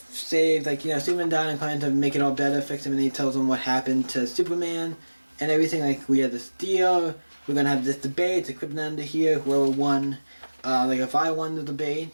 like, Superman died and kind of make it all better, fix him, and he tells them what happened to Superman. And everything, like, we had this deal, we're gonna have this debate, the Krypton here, whoever won, like, if I won the debate,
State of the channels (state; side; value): inverted; both; correlation -1.00